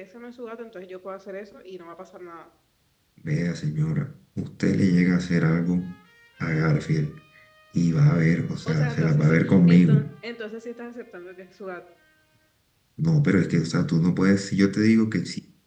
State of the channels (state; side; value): identical; both; correlation 1.00